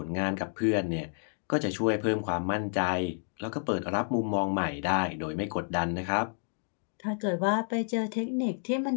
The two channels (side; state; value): right; silent; 58 dB below the other